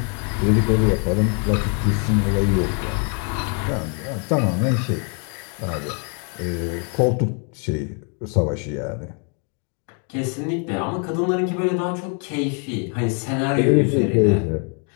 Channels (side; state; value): right; quieter; 39.3 dB